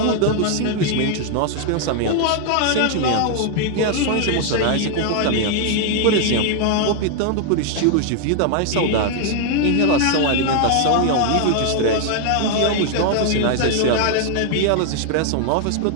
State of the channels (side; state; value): both; different; correlation 0.00